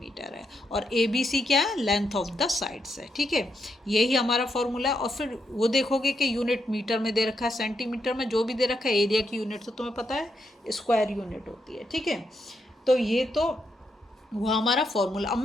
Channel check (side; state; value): both; normal; correlation 0.80